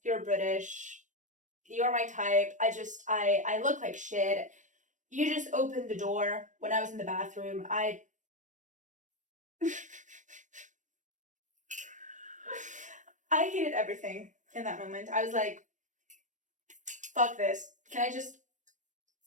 you're British, you're my type. I look like shit. You just opened the door when I was in the bathroom. I hated everything in that moment. I was like, fuck this. Can I just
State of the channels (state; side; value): late; left; 0.36 ms